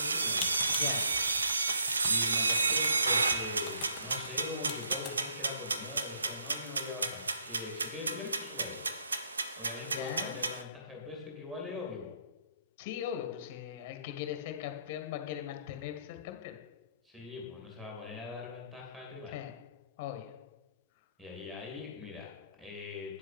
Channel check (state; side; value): inverted; both; correlation -0.67